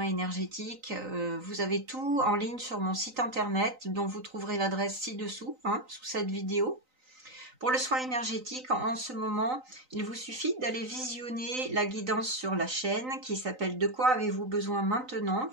énergétique, vous avez tout en ligne sur mon site internet dont vous trouverez l'adresse ci-dessous, sous cette vidéo. Pour le soin énergétique, en ce moment, il vous suffit d'aller visionner la guidance sur la chaîne qui s'appelle « De quoi avez-vous besoin maintenant ?»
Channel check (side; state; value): left; late; 3.9 ms